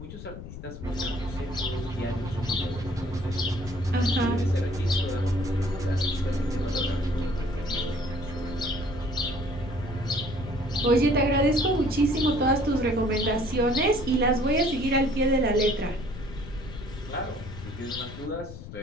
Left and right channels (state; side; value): noise; left; rumble, 12 dB below the sound